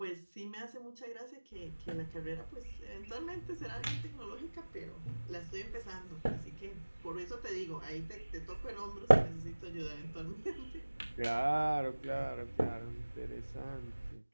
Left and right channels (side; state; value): both; inverted; correlation -1.00